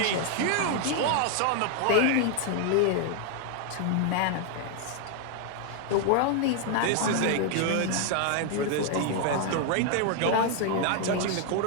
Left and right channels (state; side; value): different; both; correlation 0.01